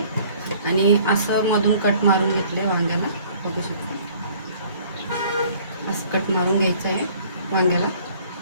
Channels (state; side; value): inverted; both; correlation -0.54